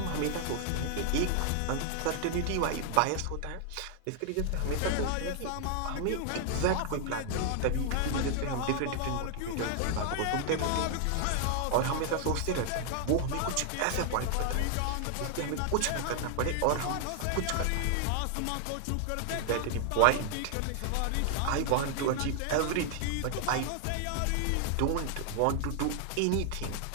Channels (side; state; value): both; different; correlation 0.00